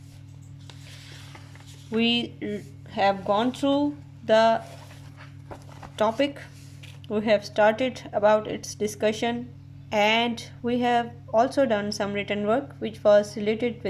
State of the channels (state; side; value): identical; both; correlation 1.00